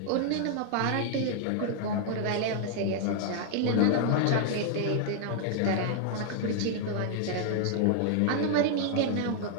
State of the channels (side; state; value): both; different; correlation -0.01